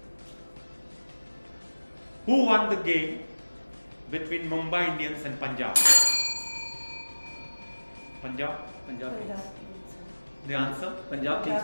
Who won the game between Mumbai Indians and Punjab? Punjab? Punjab Kings. The answer? Punjab Kings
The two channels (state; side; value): inverted; both; correlation -1.00